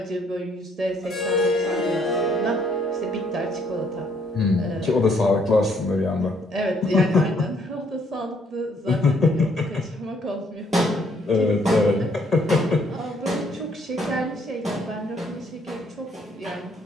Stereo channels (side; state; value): both; normal; correlation 0.67